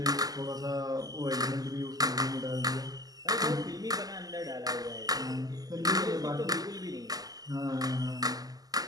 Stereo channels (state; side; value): late; left; 0.18 ms